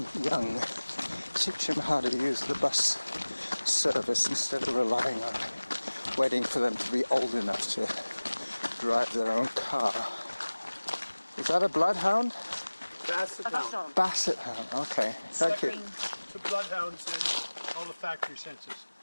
young, teach them how to use the bus service instead of relying on waiting for them to be old enough to drive their own car. Is that a bloodhound? Basset Above hound. zone. Basset hound, okay. Thank you. The bloodhounds and all the factory senses.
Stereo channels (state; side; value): inverted; both; correlation -1.00